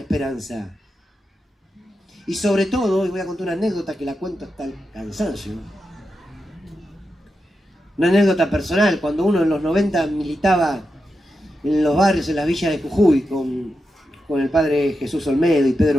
Y sobre todo, y voy a contar una anécdota que la cuento hasta el cansancio. Una anécdota personal, cuando uno en los 90 militaba en los barrios, en las villas de Jujuy, con el padre Jesús Olmedo y Pedro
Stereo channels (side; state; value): both; normal; correlation 0.88